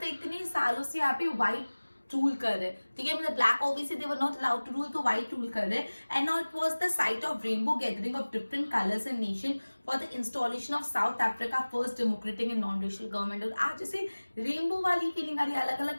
इतने सालों से यहाँ पे white रूल कर रहे, ठीक है, मतलब black obviously they were not allowed to rule, तो व्हाइट रूल कर रहे. And now it was the site of rainbow gathering of different colours and nation for the installation of South Africa first democratic and non racial government. और आज जैसे rainbow वाली feeling आ रही है, अलग अलग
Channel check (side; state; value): both; inverted; correlation -1.00